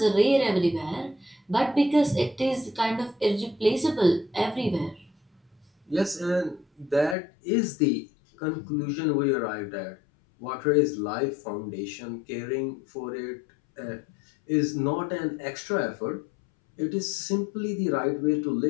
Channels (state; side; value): drops out; right; at 7.2 s